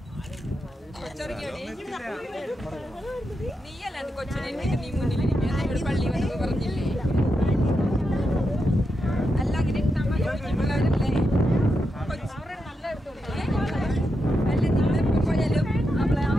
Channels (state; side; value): normal; both; correlation 0.85